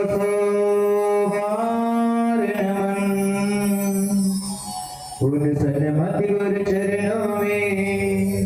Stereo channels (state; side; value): identical; both; correlation 1.00